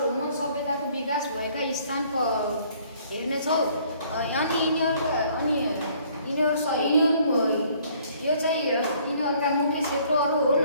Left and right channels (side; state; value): both; inverted; correlation -0.60